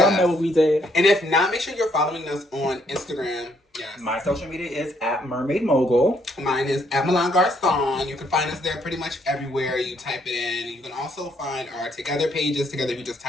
Yes. know what we did. And if not, make sure you're following us on Instagram. Yes. My social media is at Mermaid Mogul. Mine is at Milan Garcon. You can find us there pretty much everywhere. You type it in. You can also find our Together pages. Together, you just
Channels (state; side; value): normal; both; correlation 0.70